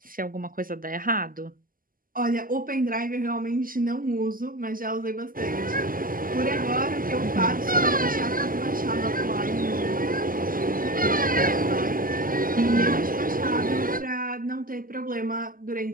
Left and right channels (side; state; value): left; late; 0.41 ms